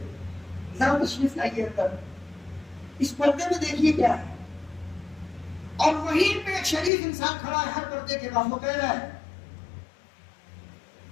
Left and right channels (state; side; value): drops out; right; at 6.9 s